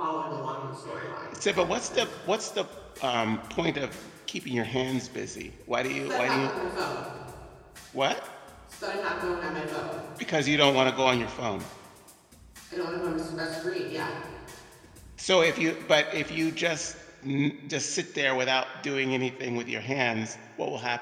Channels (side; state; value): both; identical; correlation 1.00